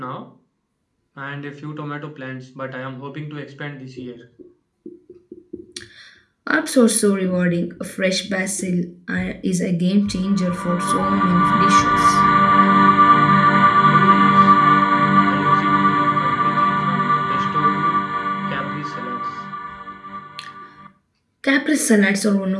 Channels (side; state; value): both; identical; correlation 1.00